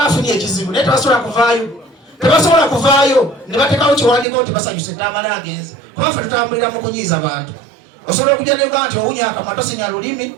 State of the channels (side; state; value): left; drops out; at 4.2 s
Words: afunye ekizibu naye tebasobola kuvaayo ne bateekawo kiwandiiko nti basanyuse Tamala agenze. Kuba ffe tutambulira mu kunyiiza bantu. Osobola okujja ne Uganda nti owunya akamwa tosinya lulimi